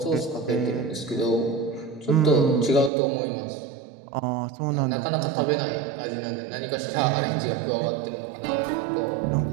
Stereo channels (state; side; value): drops out; left; at 2.9 s